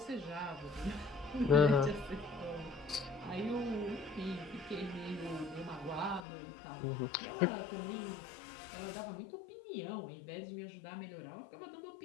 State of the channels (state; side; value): drops out; right; at 6.2 s